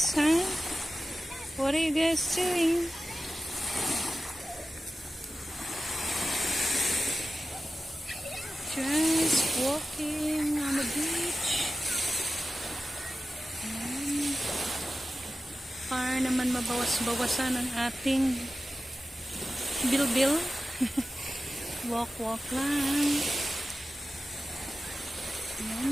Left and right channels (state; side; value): normal; both; correlation 0.94